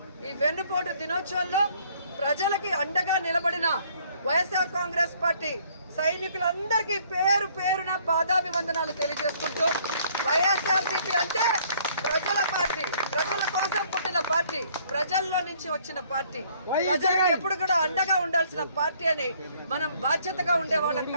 ఈ వెన్నుపోటు దినోత్సవంలో ప్రజలకి అండగా నిలబడిన వైఎస్ఆర్ కాంగ్రెస్ పార్టీ సైనికులందరికీ పేరు పేరున పాదాభివందనాలు తెలియజేసుకుంటూ వైఎస్ఆర్సీపీ అంటే ప్రజల పార్టీ, ప్రజల కోసం పుట్టిన పార్టీ, ప్రజల్లో నుంచి వచ్చిన పార్టీ, ప్రజలకు ఎప్పుడు కూడా అండగా ఉండాల్సిన పార్టీ అని మనం బాధ్యతగా ఉండేవాళ్ళం.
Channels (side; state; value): both; inverted; correlation -0.62